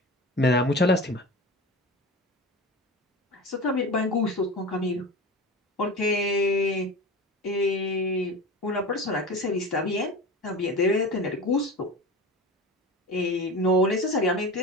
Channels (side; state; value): both; normal; correlation 0.31